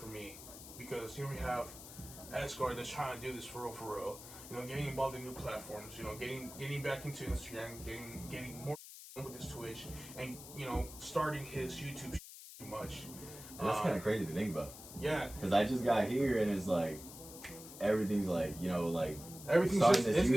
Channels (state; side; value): noise; left; hiss, 14 dB below the sound